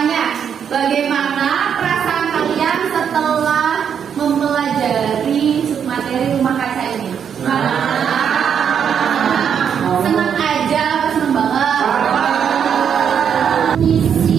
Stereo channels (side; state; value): left; quieter; 7.8 dB